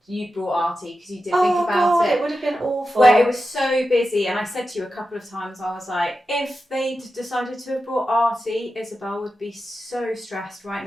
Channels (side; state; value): both; normal; correlation 0.91